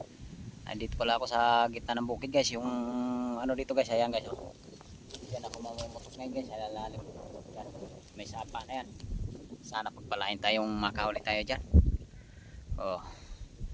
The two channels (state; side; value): identical; both; correlation 1.00